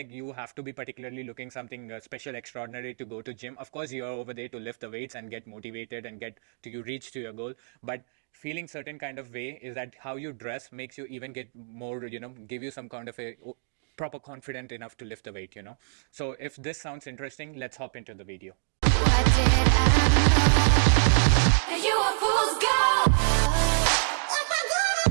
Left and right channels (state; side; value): silent; left; digital silence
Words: you have to be particularly looking something special, extraordinary to go to gym. Of course, you're over there to lift the weights and get motivated and get to you reach to your goal. But feeling certain kind of way is that how you dress makes you even get more, give you some kind of a proper confident enough to lift the weight. So if this sounds interesting, let's hop into the video. What did I know? You a fool's gold.